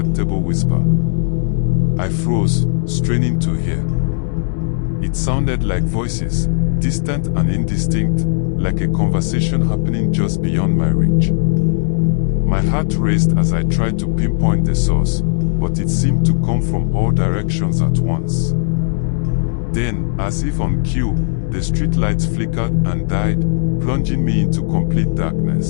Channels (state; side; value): silent; right; 64 dB below the other